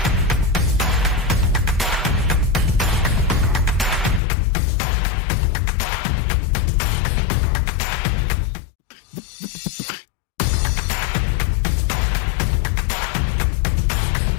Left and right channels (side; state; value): right; drops out; at 4.2 s